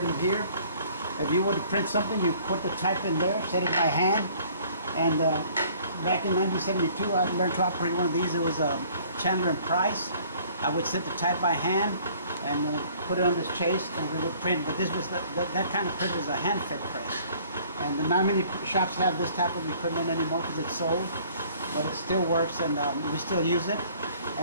them here. If you were to print something, you put the type in there, set it by hand. And back in 1972, I learned to operate one of these. It was Chandler and Price. I would set the type by hand and put it on this chase, and we would print. But this was that kind of print was a hand-fed press. And not many shops have this type of equipment anymore because it's sold. But it still works, and we still use it.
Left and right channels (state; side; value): inverted; both; correlation -0.56